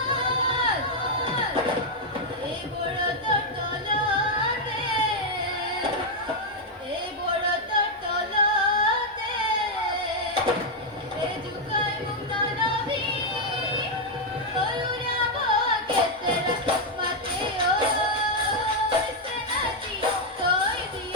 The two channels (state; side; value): normal; both; correlation 0.00